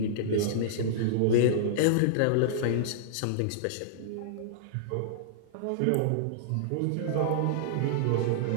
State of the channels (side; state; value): both; different; correlation -0.02